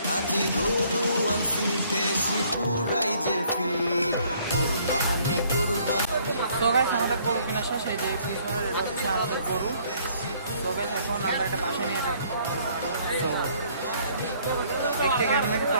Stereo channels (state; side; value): inverted; both; correlation -0.62